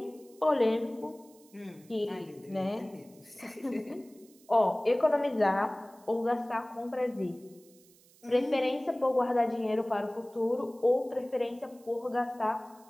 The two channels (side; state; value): right; noise; hiss, 27 dB below the sound